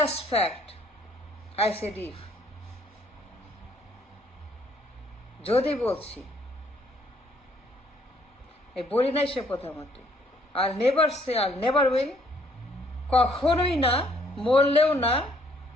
fact, I said if, যদি বলছি, এই বলি নাই সে প্রধানমন্ত্রী, আর নেভার সে, আর নেভার উইল, কখনোই না, মরলেও না,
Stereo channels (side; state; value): both; normal; correlation 0.65